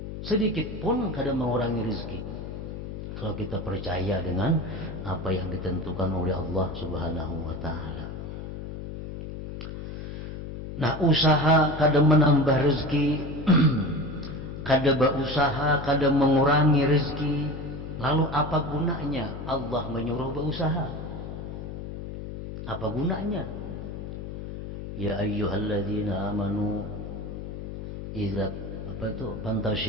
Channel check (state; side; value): noise; left; hum, 8 dB below the sound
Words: sedikit pun kadang mengurangi rezeki. Kalau kita percaya dengan apa yang ditentukan oleh Allah Subhanahu wa Ta'ala. Nah, usaha kadang menambah rezeki, kadang berusaha, kadang mengurangi rezeki. Lalu apa gunanya Allah menyuruh berusaha? Apa gunanya? Ya ayyuhalladzina amanu idza